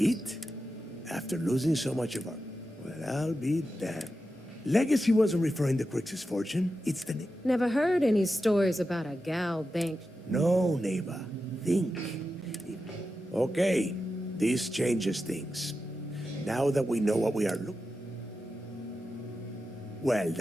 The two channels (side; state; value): both; normal; correlation 0.90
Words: After losing so much of our... Well, I'll be damned. Legacy wasn't referring to Crix's fortune. It's the... Never heard any stories about a gal bank. No, neighbor. Think. Okay, this changes things. Now that we know what we are looking... Well,